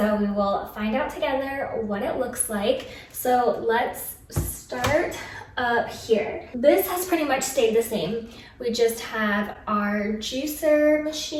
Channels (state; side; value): identical; both; correlation 1.00